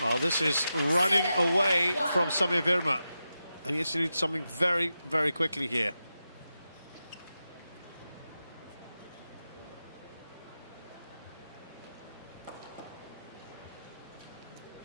this is running away from Sami Verma. And he has to do something very, very quickly here.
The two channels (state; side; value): inverted; both; correlation -0.90